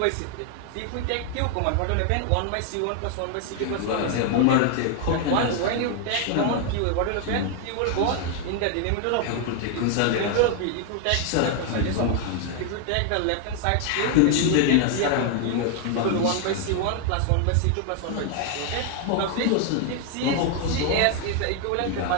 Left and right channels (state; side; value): different; both; correlation 0.01